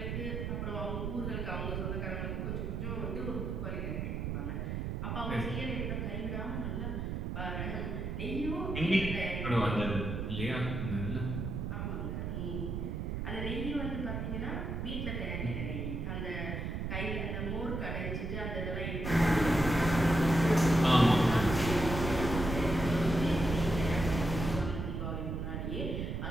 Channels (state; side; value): noise; right; rumble, 3 dB below the sound